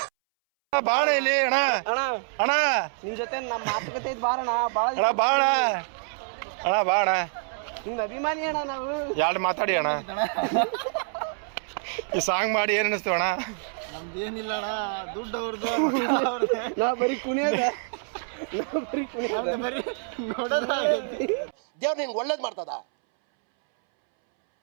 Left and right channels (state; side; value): silent; left; 61 dB below the other